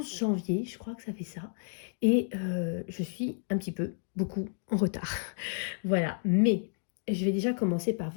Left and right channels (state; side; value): silent; right; digital silence